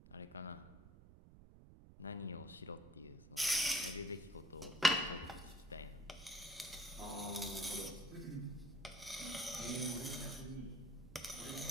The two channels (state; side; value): noise; right; rumble, 18 dB below the sound